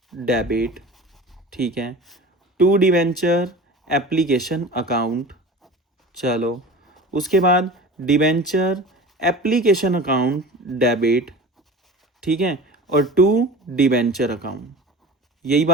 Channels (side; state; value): both; normal; correlation 0.36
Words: डेबिट, ठीक है, टू डिवेंचर एप्लीकेशन अकाउंट, चलो उसके बाद डिवेंचर एप्लीकेशन अकाउंट डेबिट, ठीक है, और टू डिवेंचर अकाउंट। यही